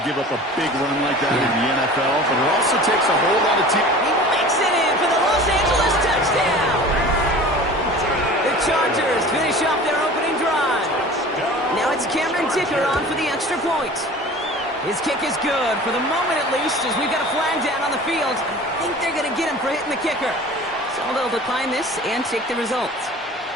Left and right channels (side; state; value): both; normal; correlation 0.41